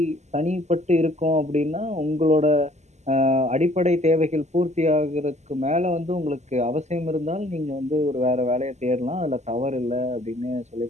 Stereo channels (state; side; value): late; left; 0.33 ms